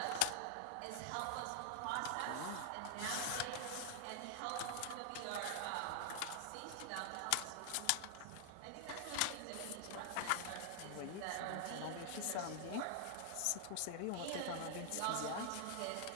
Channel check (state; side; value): different; both; correlation -0.01